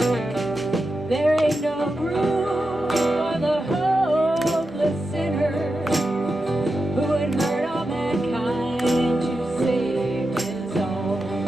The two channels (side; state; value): both; normal; correlation 0.89